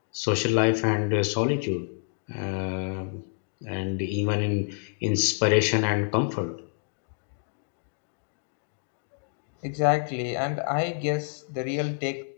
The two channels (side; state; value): right; silent; digital silence